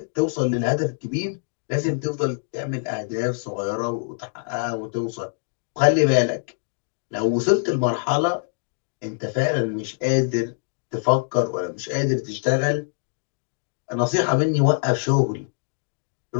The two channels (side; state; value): right; silent; digital silence